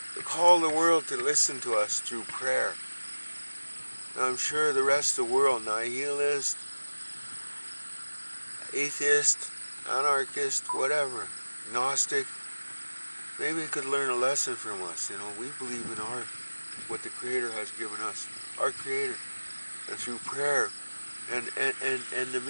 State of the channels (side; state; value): both; inverted; correlation -1.00